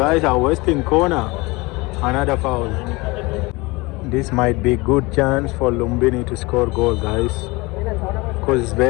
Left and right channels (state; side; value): quieter; right; 23.8 dB